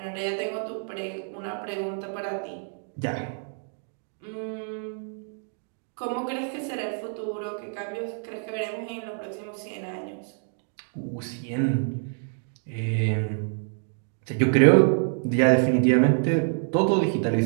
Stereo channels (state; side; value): silent; left; 60 dB below the other